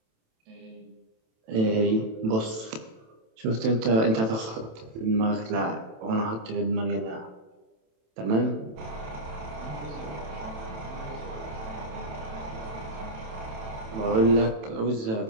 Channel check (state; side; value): late; left; 27 ms